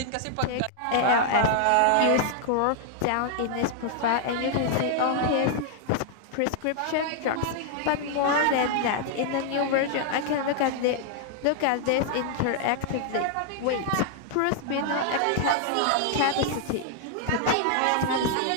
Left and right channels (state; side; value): different; both; correlation 0.00